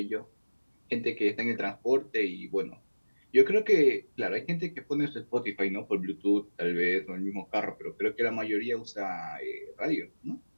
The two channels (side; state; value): both; inverted; correlation -1.00